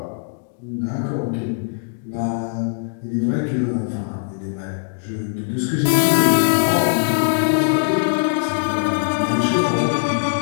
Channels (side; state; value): right; silent; digital silence